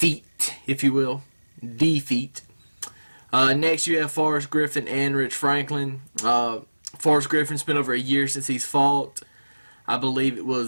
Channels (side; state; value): both; inverted; correlation -1.00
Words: you will, defeat. Next, you have Forrest Griffin and Rich Franklin. Forrest Griffin's been over a year since he's fought. I believe it